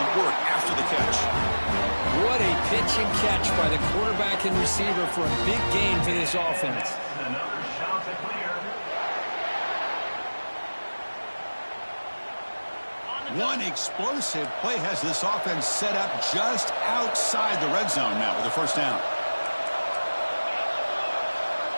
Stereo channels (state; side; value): inverted; both; correlation -1.00